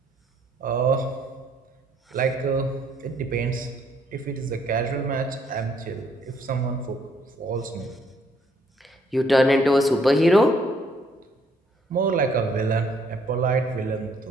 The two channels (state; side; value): normal; both; correlation 0.67